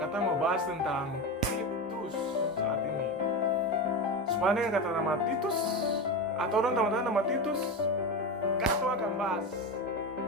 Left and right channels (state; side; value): normal; both; correlation 0.20